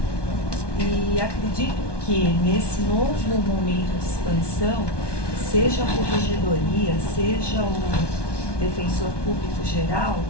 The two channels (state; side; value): late; right; 1.2 ms